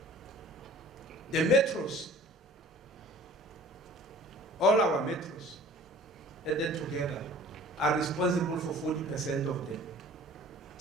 The metros, all our metros, added together, are responsible for 40% of the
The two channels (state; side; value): normal; both; correlation 0.49